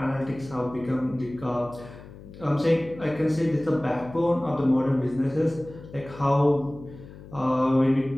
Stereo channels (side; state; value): left; noise; hum, 17 dB below the sound